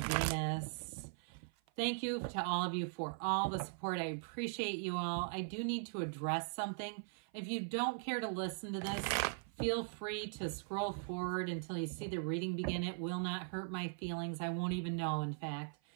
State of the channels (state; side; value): silent; left; 51 dB below the other